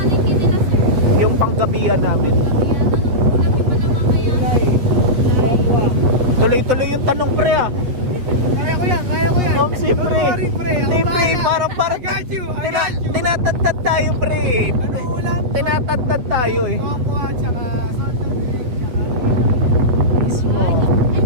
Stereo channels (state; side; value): late; left; 8.0 ms